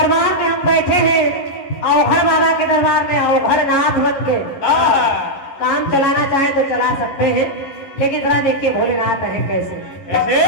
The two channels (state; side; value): late; right; 11 ms